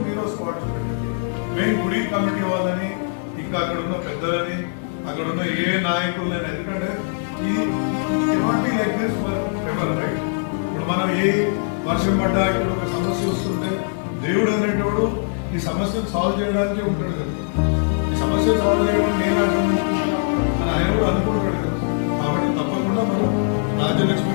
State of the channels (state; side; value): silent; right; digital silence